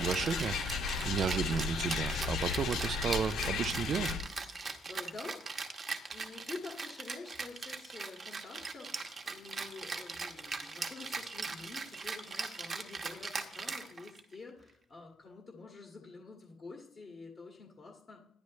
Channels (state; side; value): normal; both; correlation 0.70